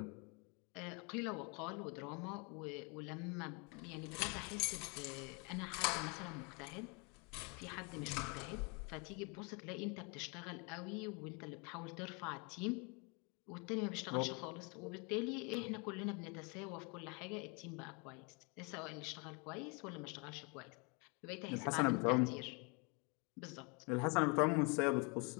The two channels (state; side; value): quieter; right; 32.2 dB